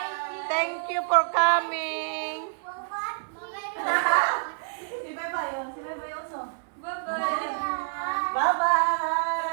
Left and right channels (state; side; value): silent; left; digital silence